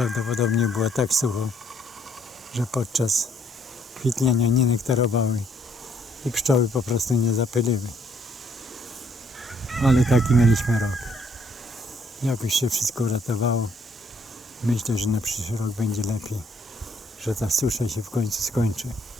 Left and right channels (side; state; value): both; normal; correlation 0.67